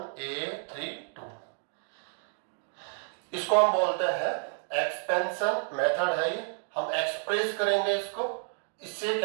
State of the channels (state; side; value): silent; left; 55 dB below the other